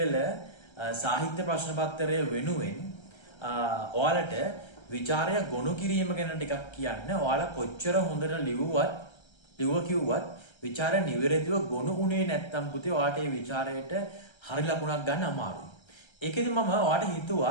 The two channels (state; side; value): late; right; 1.3 ms